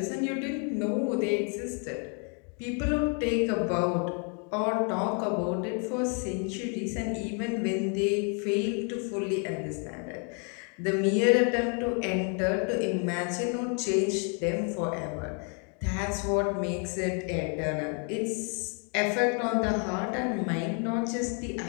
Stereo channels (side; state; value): right; quieter; 39.8 dB